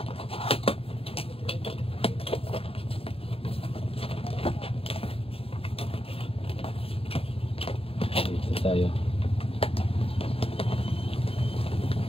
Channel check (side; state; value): right; late; 0.27 ms